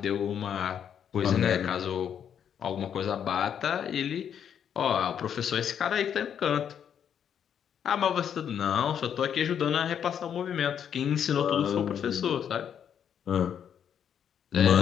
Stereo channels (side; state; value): right; quieter; 8.6 dB